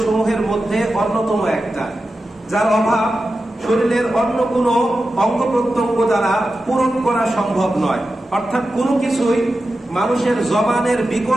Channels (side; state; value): both; normal; correlation 0.92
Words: সমূহের মধ্যে অন্যতম একটা, যার অভাব শরীরের অন্য কোনো অঙ্গ প্রত্যঙ্গ দ্বারা পূরণ করা সম্ভব নয়। অর্থাৎ কোনো কিছুই মানুষের জবানের